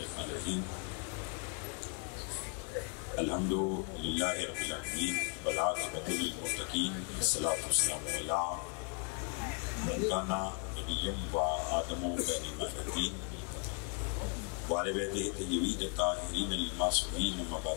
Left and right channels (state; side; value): quieter; right; 37.9 dB